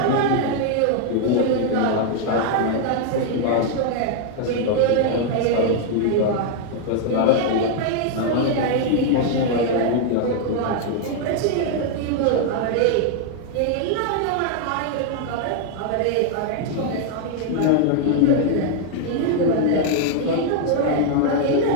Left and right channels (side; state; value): both; different; correlation 0.00